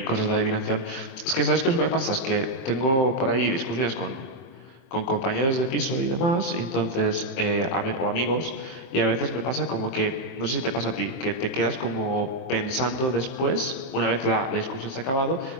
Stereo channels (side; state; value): right; late; 23 ms